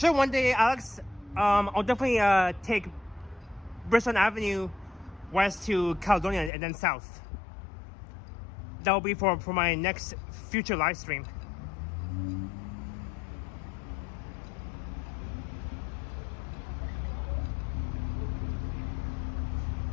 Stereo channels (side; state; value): right; drops out; at 6.5 s